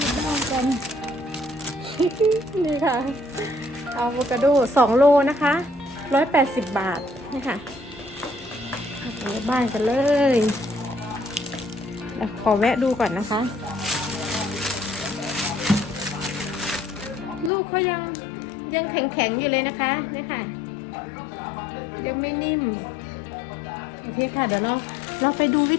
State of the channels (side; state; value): right; drops out; at 17.5 s